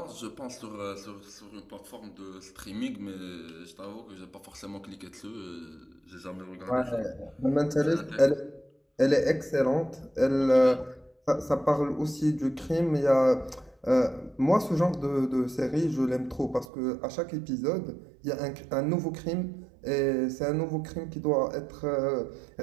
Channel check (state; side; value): drops out; left; at 16.7 s